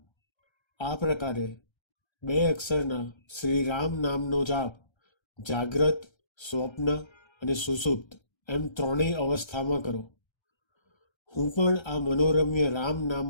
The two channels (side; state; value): right; late; 1.3 ms